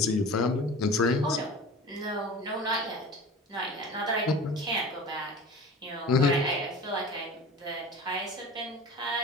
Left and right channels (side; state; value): both; normal; correlation 0.37